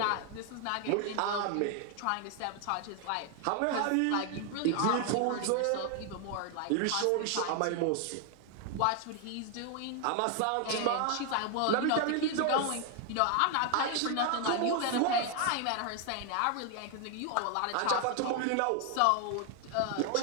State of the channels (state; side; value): different; both; correlation 0.00